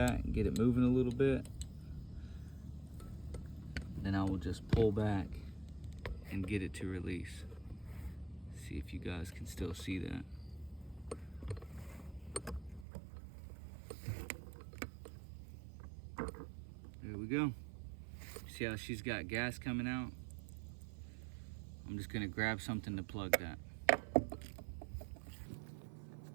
and get it moving a little bit. Then I will just pull back and get it to release. See if you guys can still see that. There we go. See how she's got gas coming out? I'm just gonna grab something to plug that.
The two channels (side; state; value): left; drops out; at 12.9 s